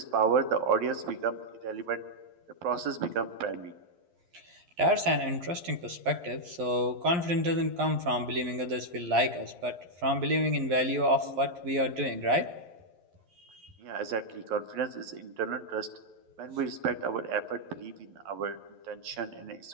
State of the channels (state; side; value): late; left; 11 ms